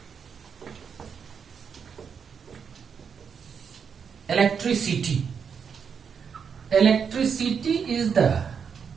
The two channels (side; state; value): left; quieter; 6.7 dB